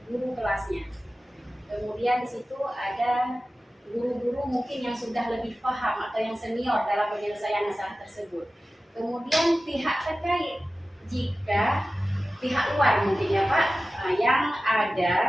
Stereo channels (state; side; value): normal; both; correlation 0.95